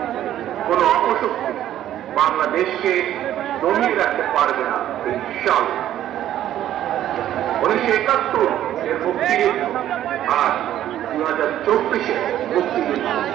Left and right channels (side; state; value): left; quieter; 12.0 dB